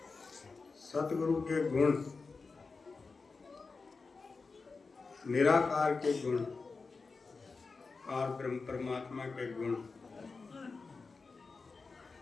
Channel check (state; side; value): quieter; right; 4.3 dB